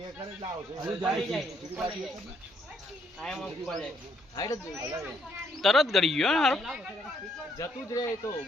કરે લાવ છો તરત ગળી ગયો હારો જતું જ રહે તો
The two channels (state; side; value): normal; both; correlation 0.71